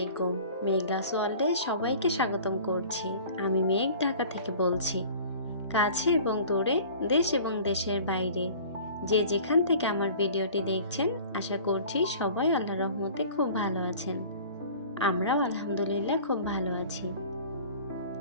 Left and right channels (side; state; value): both; inverted; correlation -0.44